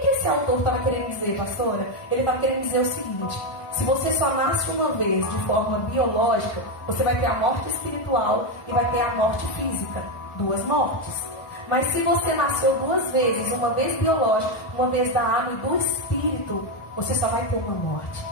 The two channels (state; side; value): late; right; 1.5 ms